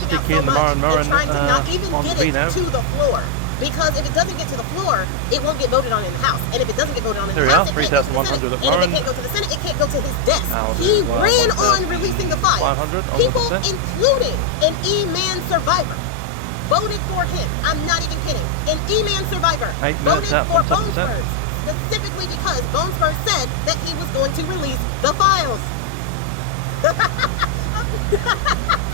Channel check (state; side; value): different; both; correlation 0.00